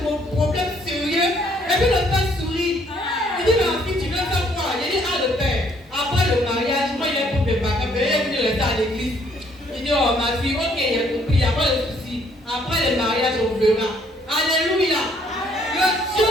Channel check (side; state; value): both; normal; correlation 0.65